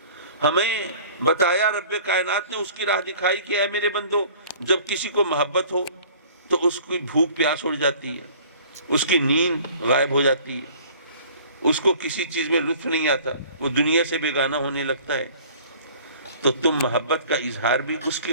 ہمیں بتایا رب کائنات نے، اس کی راہ دکھائی کہ اے میرے بندو، جب کسی کو محبت ہو تو اس کی بھوک پیاس اڑ جاتی ہے، اس کی نیند غائب ہو جاتی ہے، اس کو کسی چیز میں لطف نہیں آتا، وہ دنیا سے بیگانہ ہونے لگتا ہے. تو تم محبت کا اظہار بھی اس کی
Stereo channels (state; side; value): inverted; both; correlation -0.49